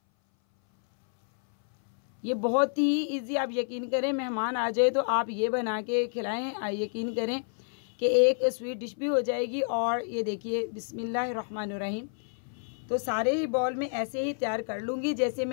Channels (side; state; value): right; silent; 58 dB below the other